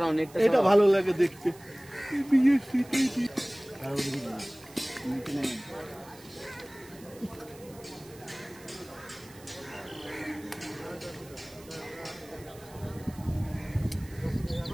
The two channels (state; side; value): noise; right; hiss, 22 dB below the sound